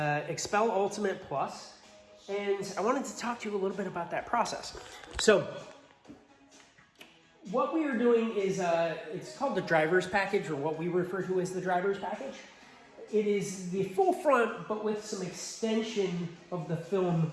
Ultimate Plus, and I wanted to talk to you a little bit about that process. So what we are doing is, it's called the driver's package, or what we refer to as the driver's package. It is the full front, but with some extension of the film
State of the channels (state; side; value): identical; both; correlation 1.00